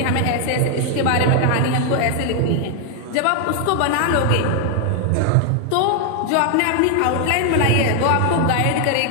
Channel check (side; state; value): both; different; correlation 0.00